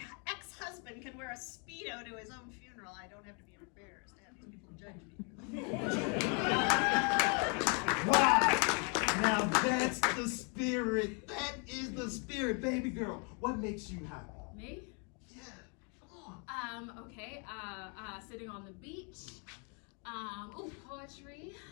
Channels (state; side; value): quieter; right; 36.6 dB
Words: ex-husband can wear a Speedo to his own funeral, I don't have to be embarrassed to have these people judge me. Wow! Now that's the spirit. That is the spirit, baby girl. What makes you happy? Me? Yeah, come on. Okay, sitting on the beach. Poetry.